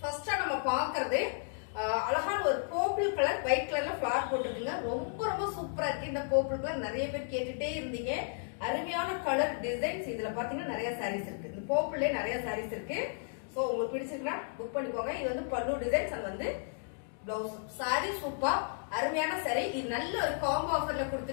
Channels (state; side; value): silent; right; digital silence